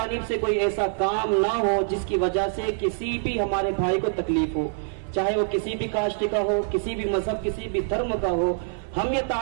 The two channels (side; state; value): left; silent; 62 dB below the other